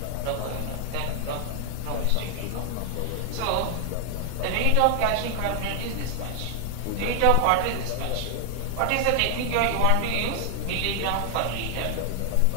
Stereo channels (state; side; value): different; both; correlation 0.00